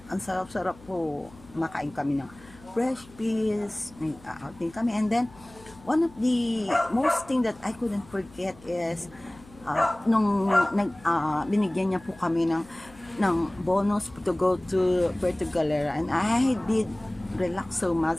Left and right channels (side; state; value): left; noise; hum, 23 dB below the sound